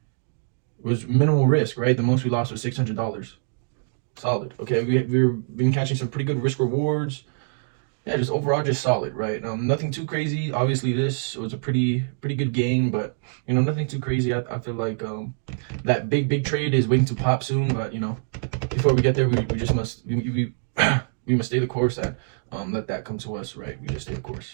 was minimal risk, right? The most we lost was $600. Solid. Okay, we've been catching some pretty good risk rewards. Yeah, just overall just solid, right? Nothing too crazy. Obviously, this was a pretty good game, but nothing too crazy. I feel like that big trade is waiting to pop soon, but before we get there, we just must we must stay the course and let that come to us, right? We just stay the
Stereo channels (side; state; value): left; silent; digital silence